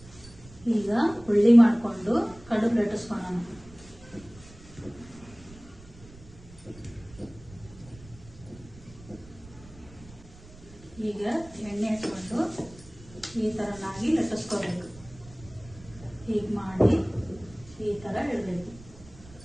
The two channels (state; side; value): noise; right; rumble, 20 dB below the sound